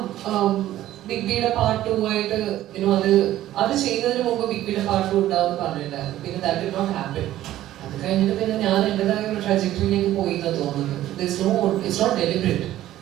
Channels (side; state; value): left; quieter; 13.8 dB